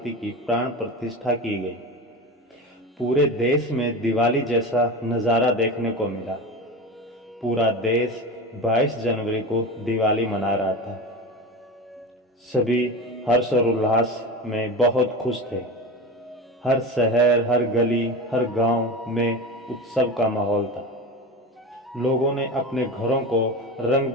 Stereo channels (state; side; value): normal; both; correlation 0.26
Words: की प्राण प्रतिष्ठा की गई। पूरे देश में दिवाली जैसा नज़ारा देखने को मिला। पूरा देश 22 जनवरी को दिवाली मना रहा था। सभी हर्ष और उल्लास में बहुत खुश थे। हर शहर, हर गली, हर गांव में उत्सव का माहौल था। लोगों ने अपने घरों को रंग